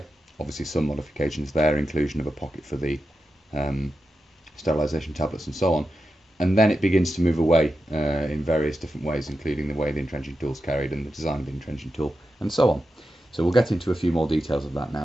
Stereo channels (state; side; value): normal; both; correlation 0.89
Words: Obviously some modifications there, inclusion of a pocket for the sterilisation tablets and so on. And then it begins to move away in various different ways, including the way the entrenching tool is carried and the design of the entrenching tool and so on. So we'll get into a few more details of that